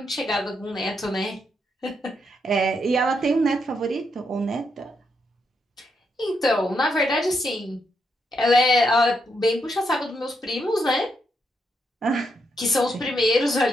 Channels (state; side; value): normal; both; correlation 0.80